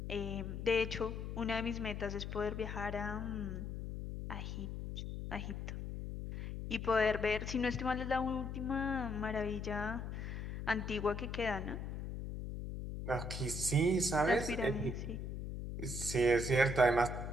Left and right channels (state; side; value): noise; left; hum, 5 dB below the sound